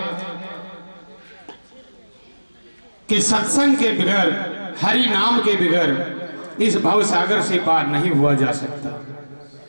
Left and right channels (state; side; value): inverted; both; correlation -1.00